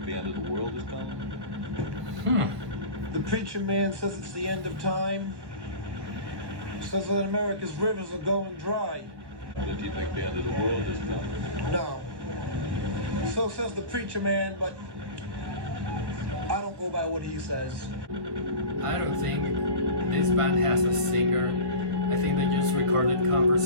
the end of the world is coming? The preacher man says it's the end of time. Says that America's rivers are going dry. Or did you think the end of the world is coming? No. So says the preacher man, but I don't go by what he says. I don't think this band has a singer. I think they just recorded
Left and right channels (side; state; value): left; late; 1.4 ms